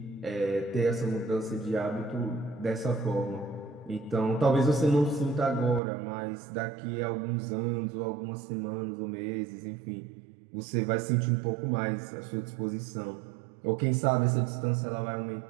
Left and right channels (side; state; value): left; drops out; at 5.8 s